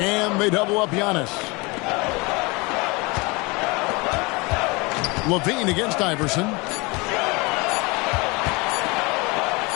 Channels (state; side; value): quieter; right; 26.5 dB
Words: they double up Giannis. LaVine against Iverson.